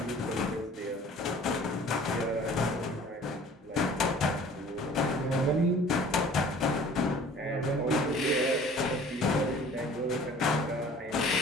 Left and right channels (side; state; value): both; normal; correlation 0.49